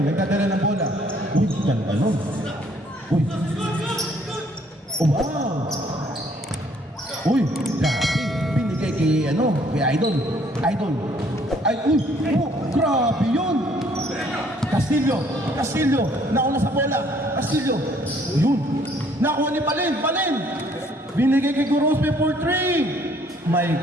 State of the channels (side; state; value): both; normal; correlation 0.62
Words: nagdadala ng bola. Uy, ganda nun. Uy. Oh, wow. Uy, grabe. Binigay kay Idol. Ay, uy, oh, grabe yun. Castillo, nauna sa bola. Castillo, yun. Nakuha ni Balen. Binigay kay Gorospe for 3. My